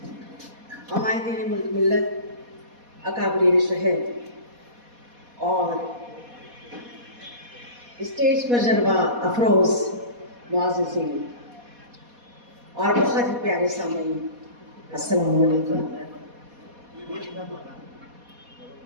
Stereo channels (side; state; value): left; late; 4.2 ms